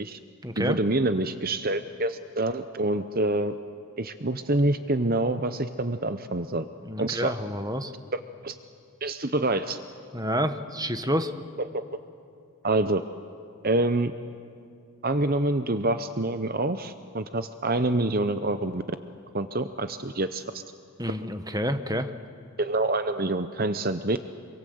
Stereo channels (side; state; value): both; normal; correlation 0.29